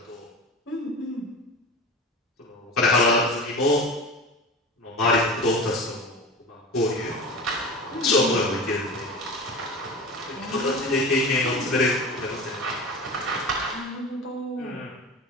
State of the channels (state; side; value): normal; both; correlation 0.31